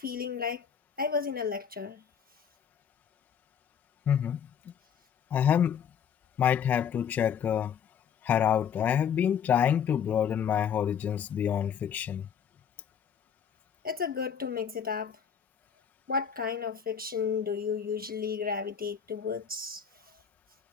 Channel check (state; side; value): quieter; right; 7.9 dB